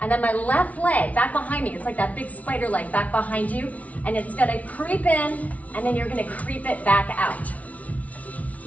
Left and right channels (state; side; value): late; right; 0.069 ms